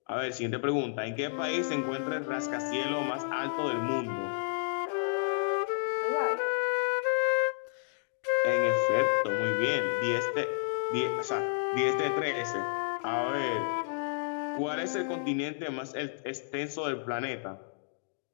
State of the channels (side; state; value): right; silent; digital silence